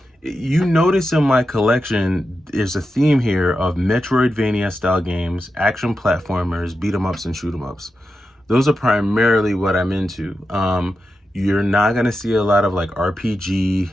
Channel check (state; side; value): normal; both; correlation 0.89